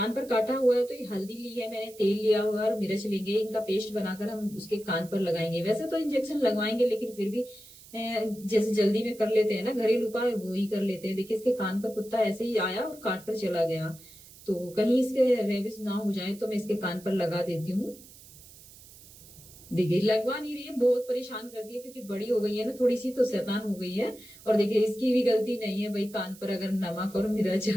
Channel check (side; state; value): right; noise; hiss, 21 dB below the sound